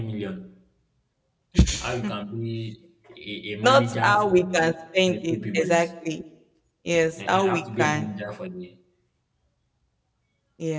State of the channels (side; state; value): both; identical; correlation 1.00